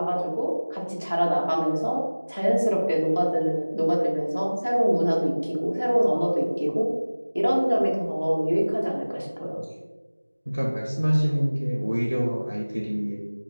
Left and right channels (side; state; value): both; inverted; correlation -1.00